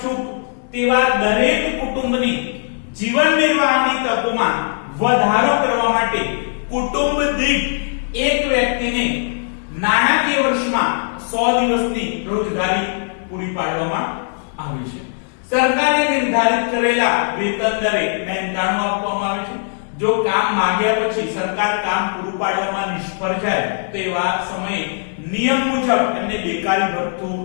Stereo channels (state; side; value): silent; right; digital silence